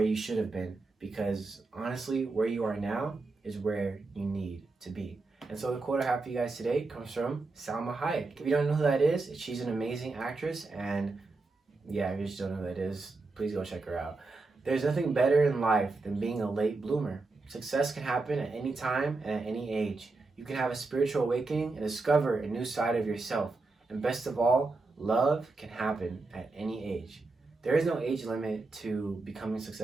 should have been, because honestly, where you are now is where you need to be. And so the quote I have for you guys today comes from Salma Hayek. If you don't know who that is, she's an amazing actress. And yeah, if you just don't know who that is, please go check her out. There's nothing better in life than being a late bloomer. Success can happen at any time and at any age. You can have a spiritual awakening and discover a new side of yourself. And best of all, love can happen at any age. There is no age limit to becoming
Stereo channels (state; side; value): quieter; left; 3.6 dB